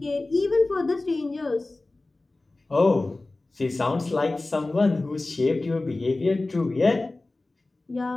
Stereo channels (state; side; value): quieter; right; 3.0 dB